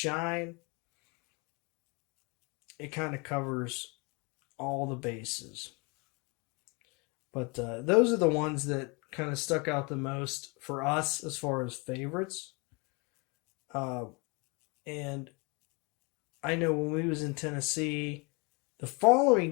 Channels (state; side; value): quieter; right; 30.3 dB